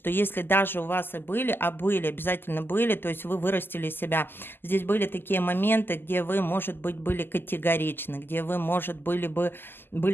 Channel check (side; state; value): right; late; 0.099 ms